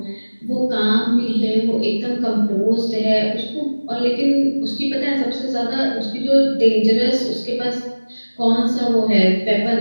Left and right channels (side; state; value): both; inverted; correlation -1.00